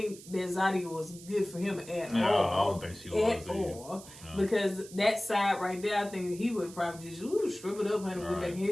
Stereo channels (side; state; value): right; noise; hiss, 17 dB below the sound